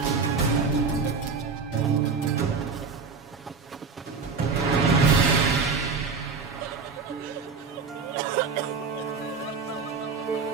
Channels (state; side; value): quieter; left; 5.0 dB